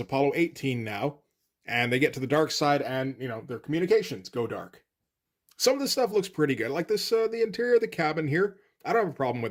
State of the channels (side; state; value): both; identical; correlation 1.00